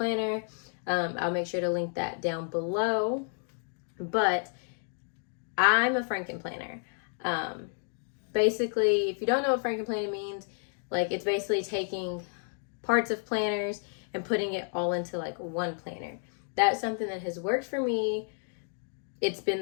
I'll make sure to link that down below. But I'm a frankenplanner. Basically, if you don't know what frankenplanner means, it's basically taking parts of planners and putting it all into one planner. That's something that has worked for me. It's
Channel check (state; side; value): silent; right; 57 dB below the other